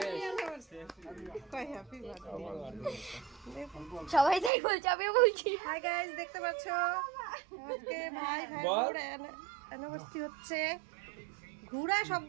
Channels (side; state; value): left; drops out; at 4.5 s